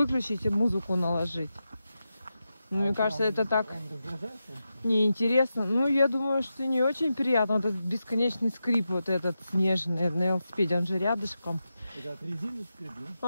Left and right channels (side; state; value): both; inverted; correlation -0.89